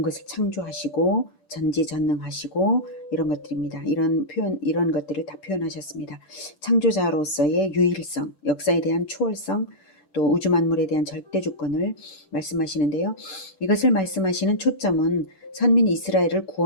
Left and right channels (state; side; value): late; right; 10 ms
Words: 것을 창조하시고 전지전능하시고 이런 것들입니다. 이런 표현, 이런 것들을 다 표현하셨습니다. 창조자로서의 유일성, 역사에 대한 초월성, 또 우주 만물에 대한 절대 주권을 말씀하시는데요. 이것을 말씀하시는 초점은 선민 이스라엘을